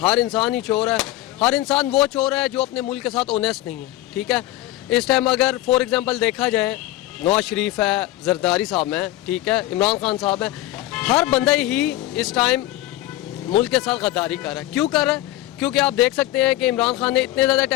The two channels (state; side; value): quieter; right; 16.0 dB